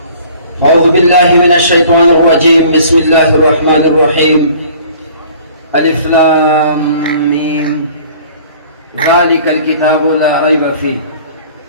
أعوذ بالله من الشيطان الرجيم. بسم الله الرحمن الرحيم. ألف لام ميم ذلك الكتاب لا ريب فيه.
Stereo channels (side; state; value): both; inverted; correlation -0.51